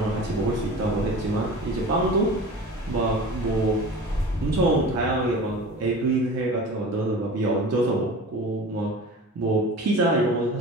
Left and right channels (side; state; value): both; normal; correlation 0.37